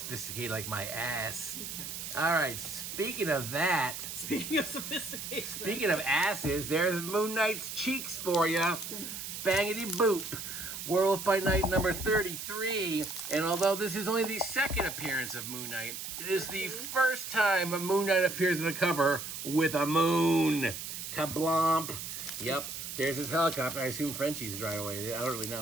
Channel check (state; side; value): noise; right; hiss, 7 dB below the sound